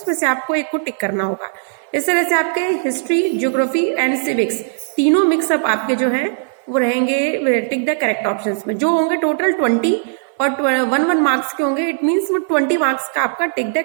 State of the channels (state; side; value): silent; left; 58 dB below the other